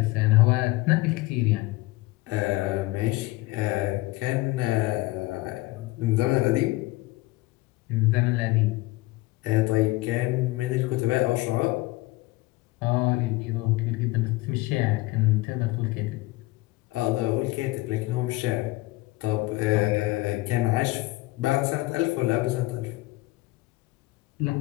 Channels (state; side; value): quieter; right; 20.2 dB